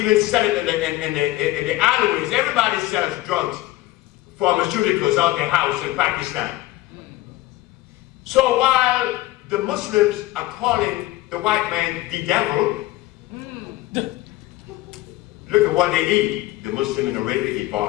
sell it in the alleyways. Everybody sells drugs, pharmaceuticals out their house in Pakistan. So while the Muslims are calling the white man the devil, look at what they eat. The Muslim in Arabia eat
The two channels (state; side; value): quieter; right; 17.3 dB